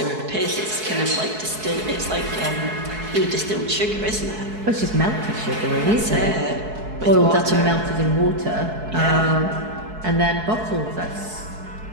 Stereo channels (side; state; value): left; late; 4.7 ms